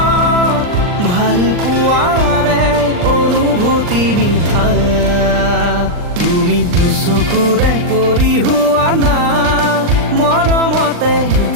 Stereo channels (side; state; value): left; late; 39 ms